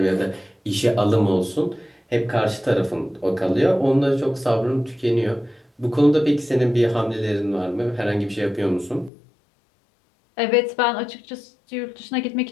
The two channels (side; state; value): right; drops out; at 9.1 s